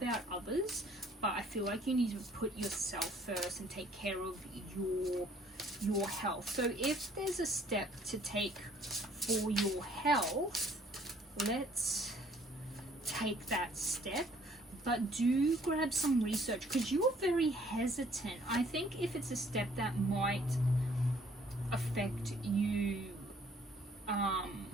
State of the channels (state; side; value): normal; both; correlation 0.60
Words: others, but I feel like you need to put yourself first and take care of your health. So if there's a step to take for your health, let's take that step. But do grab some research, because you're very hesitant. I think if it's a step that might affect you